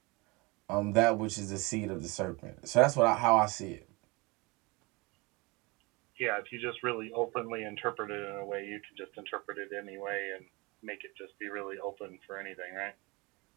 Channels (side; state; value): left; quieter; 25.9 dB